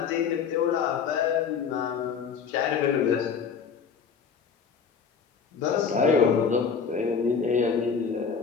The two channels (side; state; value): right; quieter; 6.3 dB